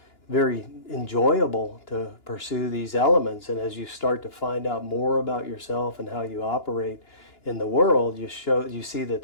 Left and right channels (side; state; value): right; late; 2.9 ms